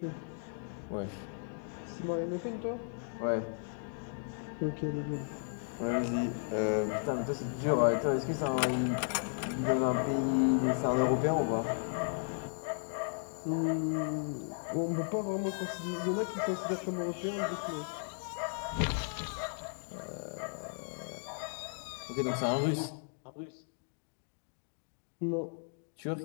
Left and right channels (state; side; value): silent; right; digital silence